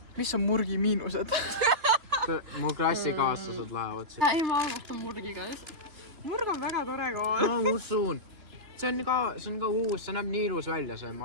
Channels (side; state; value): left; late; 3.3 ms